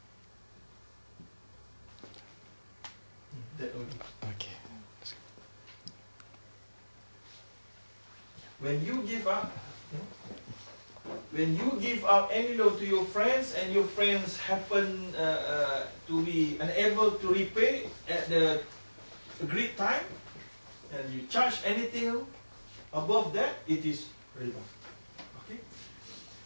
Okay. When you give out any loan to your friends and your friends happen to be unable to repay at the agreed time, and you charge anything above that, it is riba. Okay.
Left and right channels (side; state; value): both; inverted; correlation -1.00